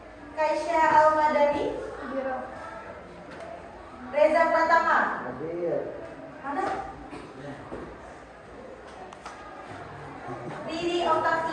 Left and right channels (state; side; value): identical; both; correlation 1.00